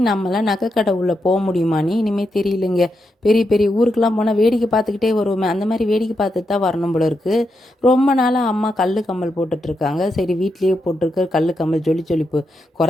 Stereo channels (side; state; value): both; normal; correlation 0.84